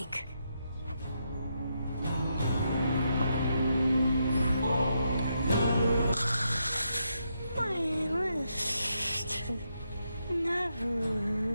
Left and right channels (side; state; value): both; inverted; correlation -0.81